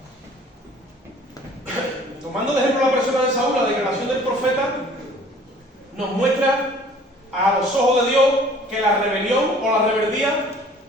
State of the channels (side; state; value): both; normal; correlation 0.52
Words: Tomando de ejemplo la persona de Saúl, la declaración del profeta nos muestra a los ojos de Dios que la rebelión o la rebeldía